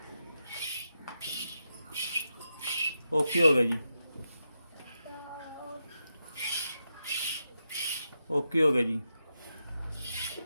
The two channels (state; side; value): inverted; both; correlation -0.86